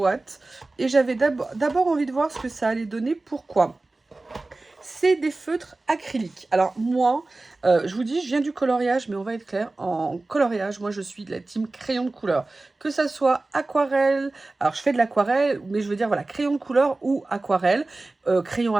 Et j'avais d'abord envie de voir ce que ça allait donner. Pourquoi ? C'est des feutres acryliques. Alors moi, je vous dis, je viens du coloriage, mais on va être clair, en coloriage, moi je suis de la team crayon de couleur. Que ça soit aquarelle, alors je fais de l'aquarelle, mais je veux dire, voilà, crayon de couleur ou aquarelle, crayon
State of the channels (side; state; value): left; quieter; 3.2 dB